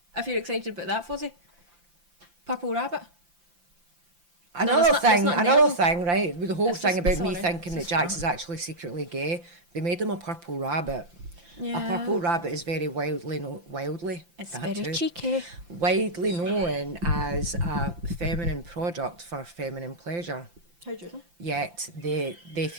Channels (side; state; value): left; late; 5.8 ms